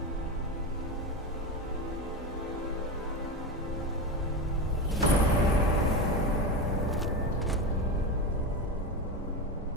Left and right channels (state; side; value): normal; both; correlation 0.18